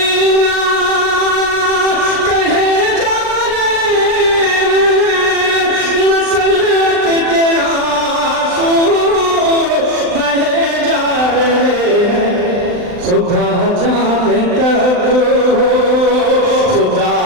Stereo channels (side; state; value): left; late; 39 ms